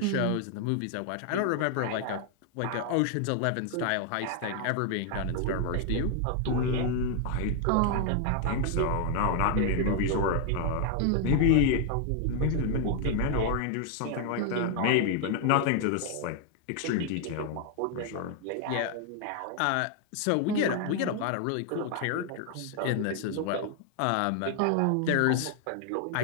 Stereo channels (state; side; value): different; both; correlation 0.00